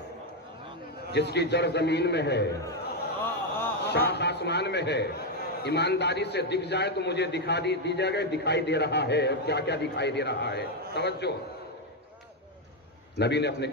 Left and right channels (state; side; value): normal; both; correlation 0.04